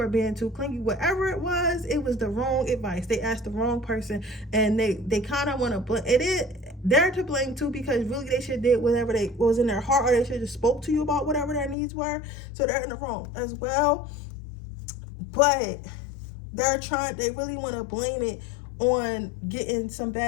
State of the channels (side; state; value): right; drops out; at 11.8 s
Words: being too clingy, whatever it was the wrong advice. They asked the wrong person, and they kind of want to blame it. They're to blame too, because really they should have did whatever they was in their heart, or they should have spoke to you about whatever their needs were. So they're in the wrong as well. But they really want to blame it on getting some